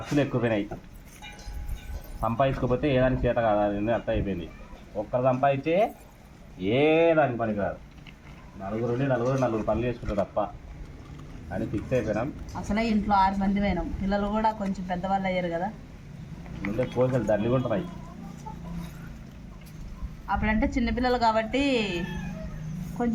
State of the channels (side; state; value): both; identical; correlation 1.00